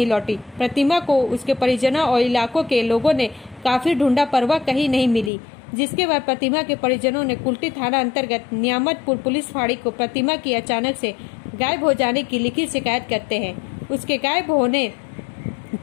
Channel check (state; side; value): drops out; right; at 5.3 s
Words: लौटी। प्रतिमा को उसके परिजनों और इलाकों के लोगों ने काफी ढूंढा पर वह कहीं नहीं मिली, जिसके बाद प्रतिमा के परिजनों ने कुल्टी थाना अंतर्गत नियामतपुर पुलिस फाड़ी को प्रतिमा की अचानक से गायब हो जाने की लिखित शिकायत करते हैं। उसके गायब होने